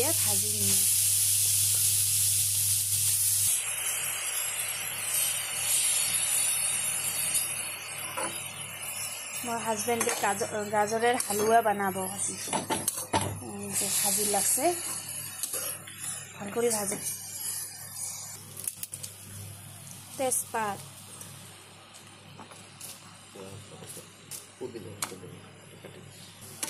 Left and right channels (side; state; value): both; identical; correlation 1.00